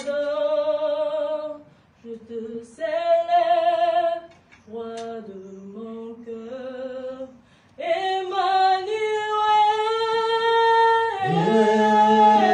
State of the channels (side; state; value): both; identical; correlation 1.00